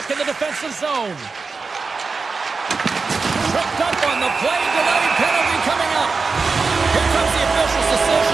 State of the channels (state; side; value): quieter; left; 4.4 dB